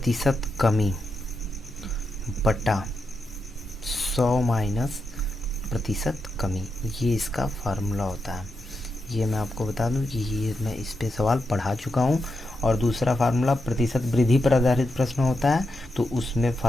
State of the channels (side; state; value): both; normal; correlation 0.85